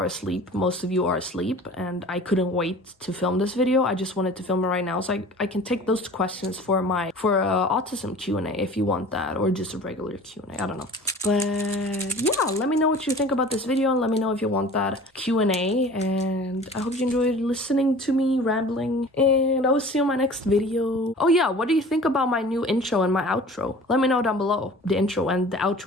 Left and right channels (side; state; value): both; normal; correlation 0.43